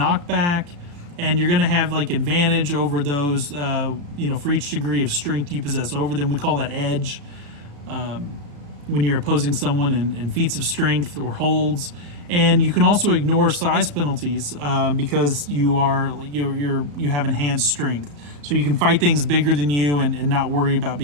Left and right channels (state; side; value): late; left; 35 ms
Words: and you're going to have like advantage over those, for each degree of strength you possess over them. We call that edge when you're opposing someone in feats of strength or holds. And you can also ignore size penalties because you have enhanced strength. So you can fight things bigger than you and not worry about